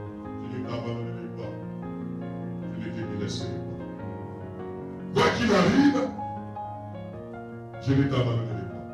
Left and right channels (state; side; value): identical; both; correlation 1.00